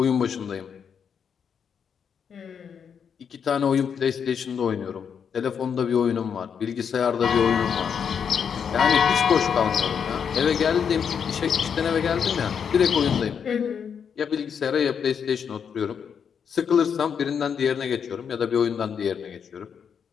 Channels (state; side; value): quieter; right; 7.2 dB